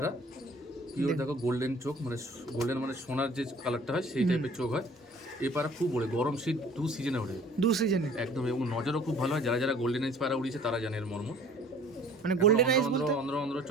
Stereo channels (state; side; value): normal; both; correlation 0.51